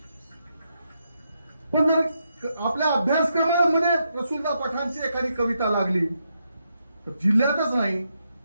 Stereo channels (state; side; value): inverted; both; correlation -0.81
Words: पण जर आपल्या अभ्यासक्रमामध्ये रसूलदा पठाणची एखादी कविता लागली तर जिल्ह्यातच नाही